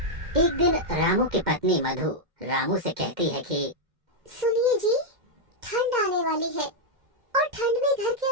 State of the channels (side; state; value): left; late; 2.1 ms